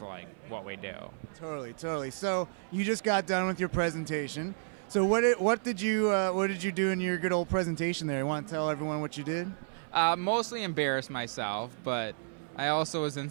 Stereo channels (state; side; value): silent; left; 57 dB below the other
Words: like what we do. Totally. So you just got done with your presentation. So what did you do in your good old presentation there? You want to tell everyone what you did? Mostly embarrass myself, but I also was in